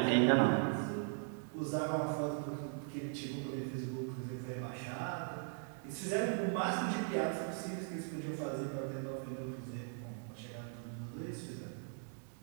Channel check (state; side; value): silent; left; 52 dB below the other